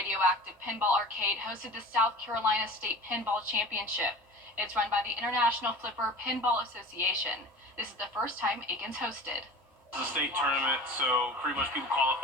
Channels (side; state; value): both; normal; correlation 0.39